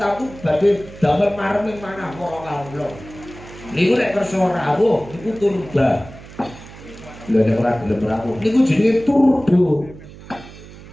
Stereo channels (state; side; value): noise; right; hum, 17 dB below the sound